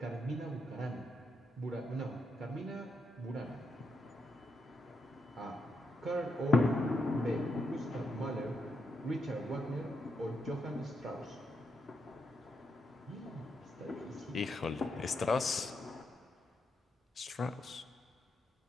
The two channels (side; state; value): both; normal; correlation 0.81